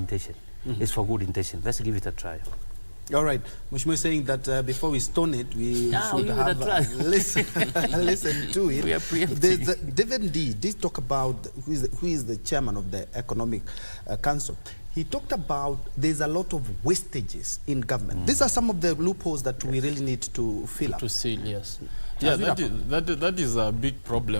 it's for good intention. Let's give it a try. All right. Mheshimiwa is saying that before we stone it, we should have listen to it. We are preempting. David D did talk about who is the chairman of the Economic Council. He talked about there's a lot of wastages in government. These are some of the loopholes that we really need to fill up. To seal, yes. Yeah, that is a big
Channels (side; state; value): both; inverted; correlation -1.00